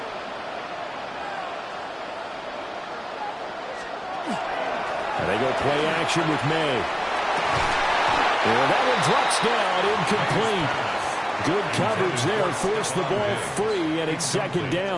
And they go play action with May. And that one drops down, incomplete. Good coverage there, forced the ball free, and it's second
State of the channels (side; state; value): both; identical; correlation 1.00